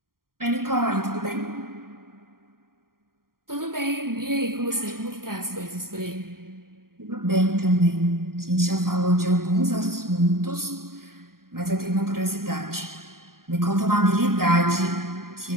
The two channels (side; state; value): left; late; 0.92 ms